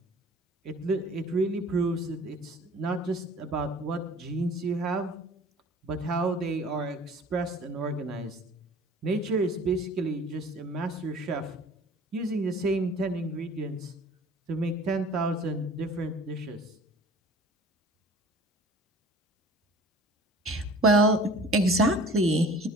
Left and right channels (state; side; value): normal; both; correlation 0.47